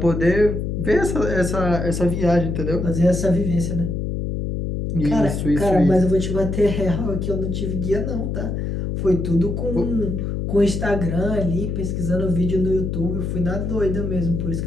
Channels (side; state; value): left; noise; hum, 2 dB below the sound